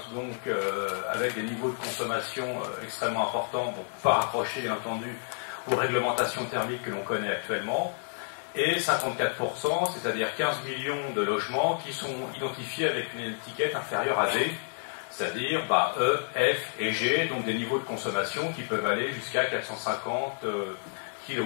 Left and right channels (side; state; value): right; silent; digital silence